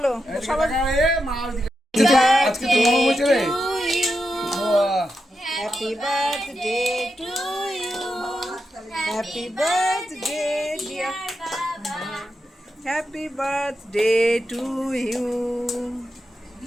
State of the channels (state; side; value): normal; both; correlation 0.87